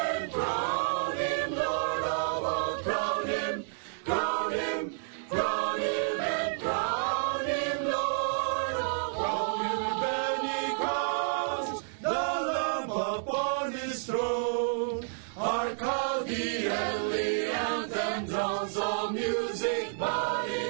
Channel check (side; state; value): left; silent; 58 dB below the other